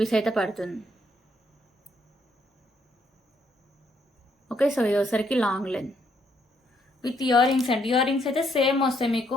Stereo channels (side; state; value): both; normal; correlation 0.72